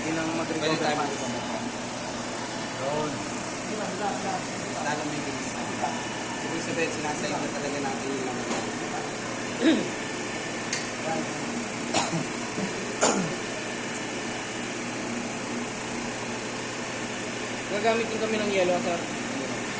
nang Pwede mag-recover tayo pass. mag-recover pass. Yun. Lalong bibilis na. Ibig sabihin, sinasayang na talaga natin yung laman. Gagamitin kami ng yellow sir.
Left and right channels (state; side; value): identical; both; correlation 1.00